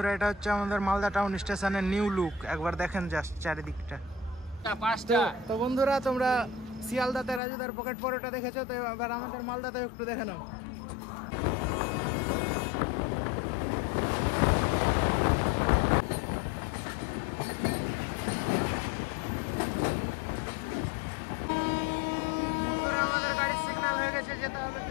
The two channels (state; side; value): drops out; right; at 7.4 s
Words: এটা হচ্ছে আমাদের মালদা টাউন স্টেশনের নিউ লুক। একবার দেখেন জাস্ট চারিদিকটা। তো বন্ধুরা তোমরা শিয়ালদাতে রাজুদার পকেট পরোটা দেখেছো, তো এবার আমাদের মালদাতে একটু দেখে নাও। বন্ধুরা আমাদের গাড়ির সিগন্যাল হয়ে গেছে, যেতে হবে,